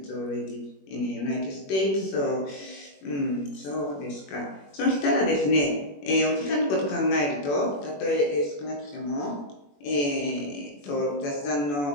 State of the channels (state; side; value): late; right; 21 ms